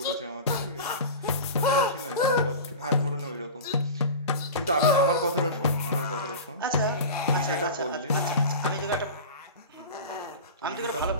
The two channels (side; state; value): both; inverted; correlation -0.30